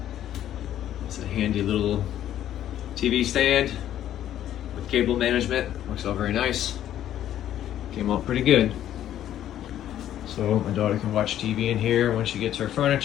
It's a handy little TV stand with cable management. Works out very nice. Came out pretty good. So my daughter can watch TV in here when she gets her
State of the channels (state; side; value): quieter; right; 11.5 dB